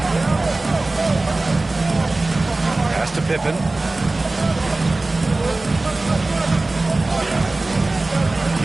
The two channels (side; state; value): left; quieter; 3.1 dB